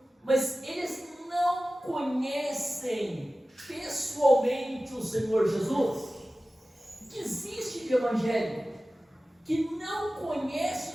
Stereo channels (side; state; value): both; normal; correlation 0.96